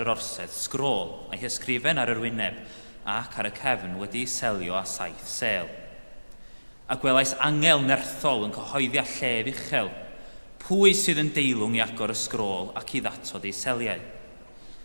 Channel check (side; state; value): both; inverted; correlation -1.00